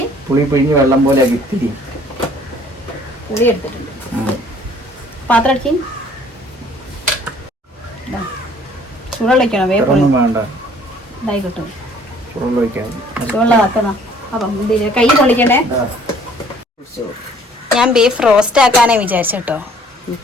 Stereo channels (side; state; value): both; normal; correlation 0.57